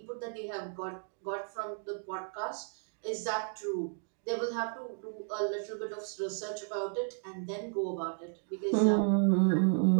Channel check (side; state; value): left; silent; 55 dB below the other